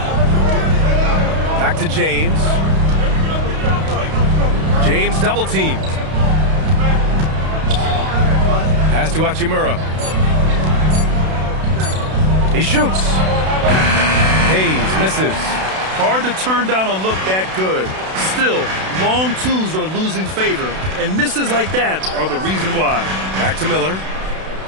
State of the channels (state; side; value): late; left; 32 ms